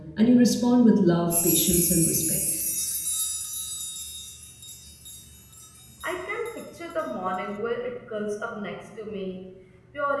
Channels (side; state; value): both; identical; correlation 1.00